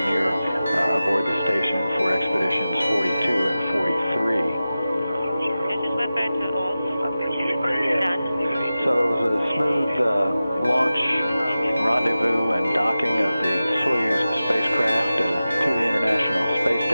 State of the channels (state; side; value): inverted; both; correlation -0.95